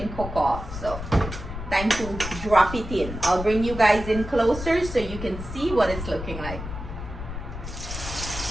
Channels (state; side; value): noise; left; rumble, 8 dB below the sound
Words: cook off. So time to drop it in. I'll bring you guys in closer so you can see what it's looking like.